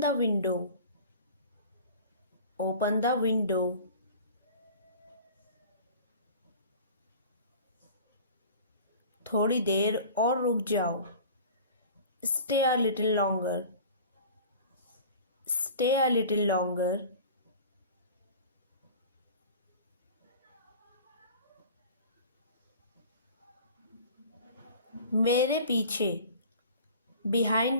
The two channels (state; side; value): inverted; both; correlation -0.42